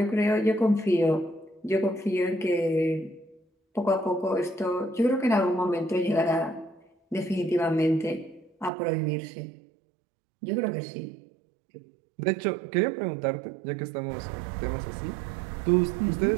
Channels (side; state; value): left; drops out; at 8.7 s